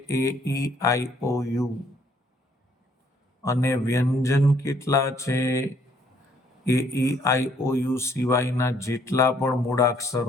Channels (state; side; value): normal; both; correlation 0.65